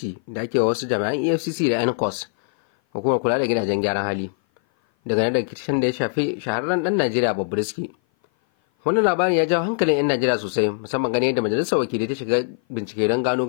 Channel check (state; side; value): silent; right; 57 dB below the other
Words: da ake wa wasu jami'an EFCC da NCOS, hukumar kula da gidajen gyaran hali. Daga nan da rikicin da ya shafi shahararren dan Najeriya Bobrisky. Wannan labarin ya jawo hankalin 'yan Najeriya sosai, musamman ganin yadda majalisar wakilai ta shiga bincike don gano